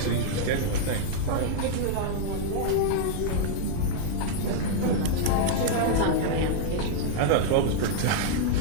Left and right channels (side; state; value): both; different; correlation -0.01